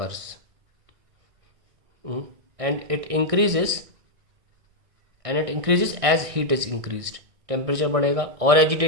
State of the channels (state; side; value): late; left; 1.6 ms